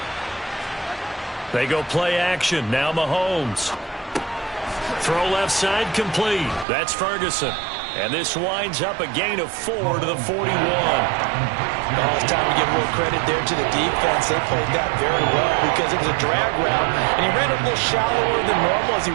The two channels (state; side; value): drops out; left; at 6.7 s